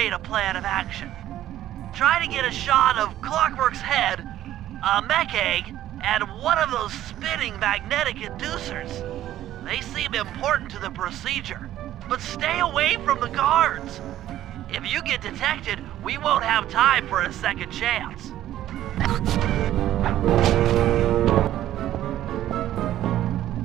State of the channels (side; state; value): left; quieter; 12.9 dB